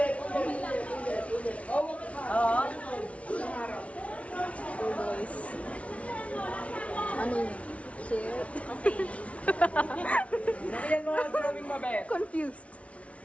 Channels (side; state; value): right; late; 0.064 ms